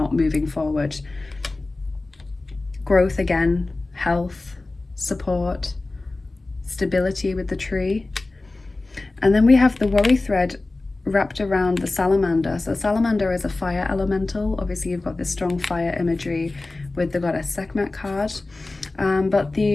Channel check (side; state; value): right; quieter; 3.1 dB